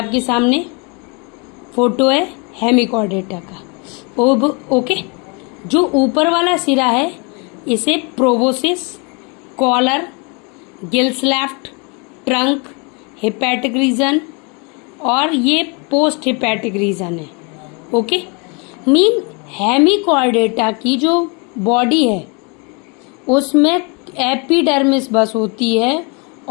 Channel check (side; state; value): right; quieter; 32.4 dB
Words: सामने फोटो है हेमिकॉर्डेटा का। ओके, जो ऊपर वाला सिरा है इसे proboscis, collar, gills left, trunk, hepatic region और ये पोस्ट हिपैटिक रीजन है। ओके, मीन हेमिकॉर्डेटा की जो बॉडी है उसमें एपिडर्मिस बस होती है